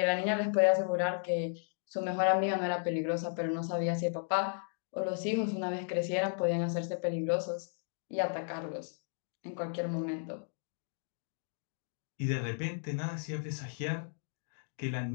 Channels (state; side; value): silent; right; digital silence